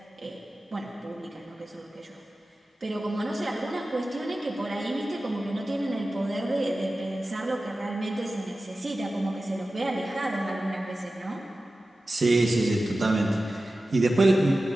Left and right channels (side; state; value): both; normal; correlation 0.95